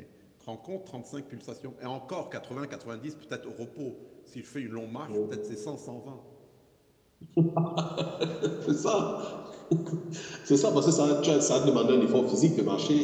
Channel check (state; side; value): identical; both; correlation 1.00